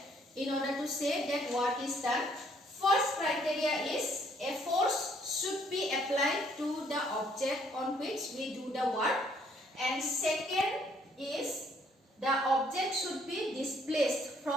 in order to say that work is done? First criteria is a force should be applied to the object on which we do the work, and second is the object should be displaced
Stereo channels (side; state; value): both; normal; correlation 0.65